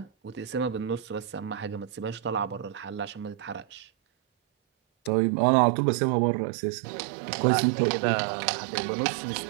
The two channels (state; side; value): drops out; left; at 5.1 s